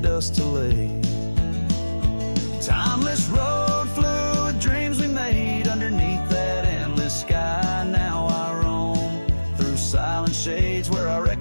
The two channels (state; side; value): inverted; both; correlation -1.00